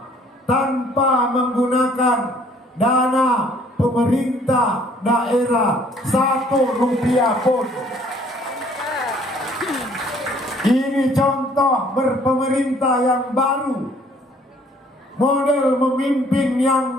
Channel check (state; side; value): normal; both; correlation 0.59